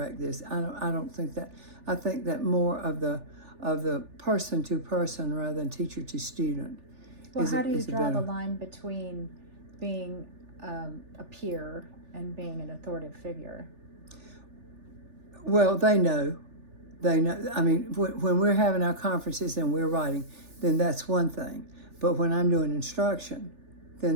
this. I don't think that. I think that more of the person to person rather than teacher to student. Well, how do you draw the line between being a peer and being an authoritative figure? Well, they know. I mean, when we're having our conferences and we're writing, then that's one thing. But when I'm doing instruction,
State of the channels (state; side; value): late; left; 3.4 ms